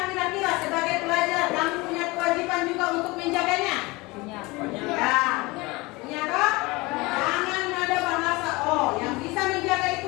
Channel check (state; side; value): quieter; right; 23.3 dB